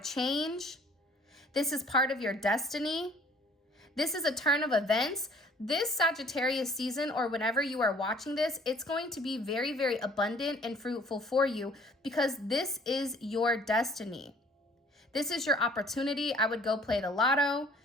change. This is part of your destiny. This is a turn of events. This Sagittarius season, or whenever you are watching this, it's going to be very, very abundant and fruitful for you because this is your destiny. This is your opportunity. I would go play the lotto.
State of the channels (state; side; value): normal; both; correlation 0.55